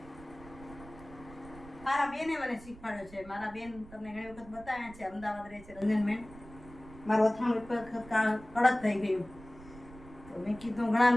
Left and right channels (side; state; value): right; noise; rumble, 19 dB below the sound